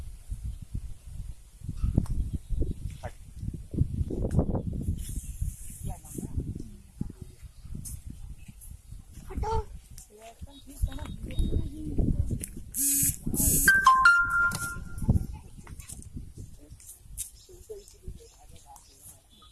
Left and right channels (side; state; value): both; identical; correlation 1.00